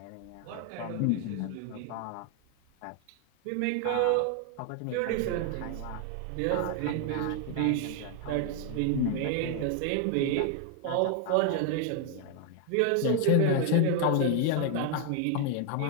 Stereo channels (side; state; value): both; different; correlation 0.00